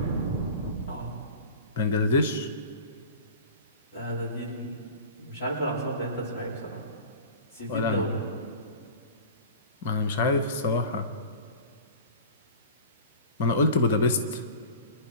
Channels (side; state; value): both; inverted; correlation -0.37